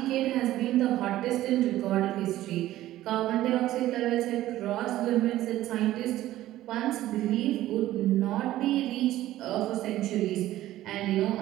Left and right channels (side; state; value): left; quieter; 14.6 dB